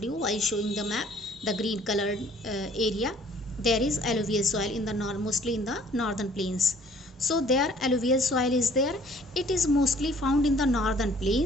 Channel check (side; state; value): both; normal; correlation 0.56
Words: you while showing the map, the green colored area. There is alluvial soil in the mostly in the northern plains. So there alluvial soil is there. It is mostly found in the northern